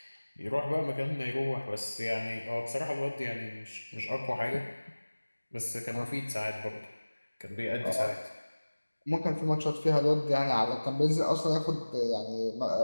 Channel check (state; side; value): inverted; both; correlation -1.00